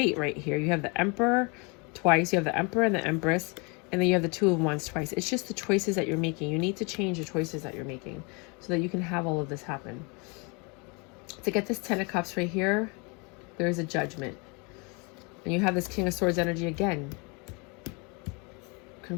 right here. You have the Emperor twice. You have the Emperor and the Empress. And then you have the Two of Wands twice. It's just the choices that you're making. You need to change the choices that you're making so that you can have all of this happen. To get this Ten of Cups right here, there is a judgment. And you have this King of Swords energy again.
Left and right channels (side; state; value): right; quieter; 31.3 dB